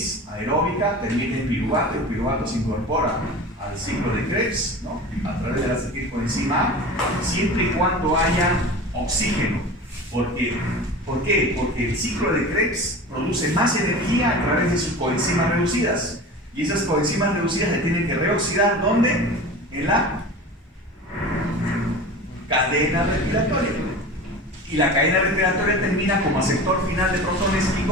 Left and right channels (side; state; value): both; normal; correlation 0.34